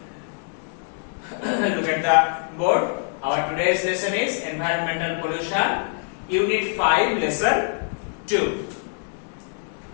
at the board. Our today's lesson is environmental pollution, Unit 5, Lesson 2.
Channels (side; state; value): right; silent; 62 dB below the other